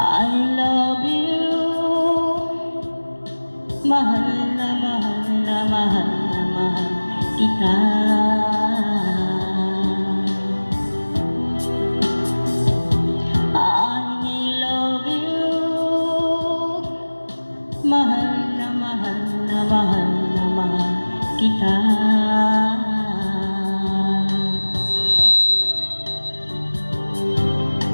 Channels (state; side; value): inverted; both; correlation -1.00